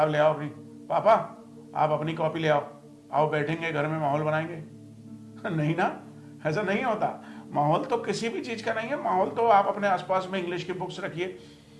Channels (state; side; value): identical; both; correlation 1.00